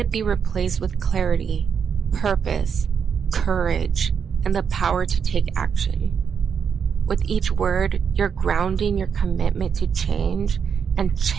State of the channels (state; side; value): quieter; left; 6.9 dB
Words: be replaced with clarity, purpose, courage, and the power to take action. With each word, you're grounding your commitment to change and